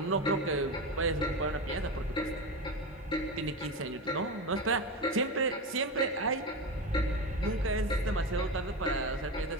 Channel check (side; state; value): both; normal; correlation 0.20